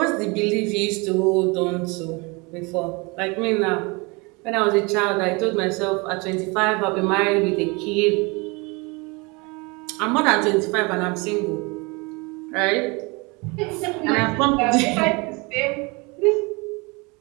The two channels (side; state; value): left; quieter; 27.8 dB